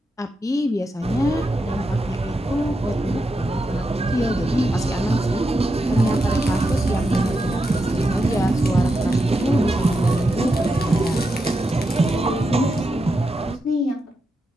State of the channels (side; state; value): both; normal; correlation 0.86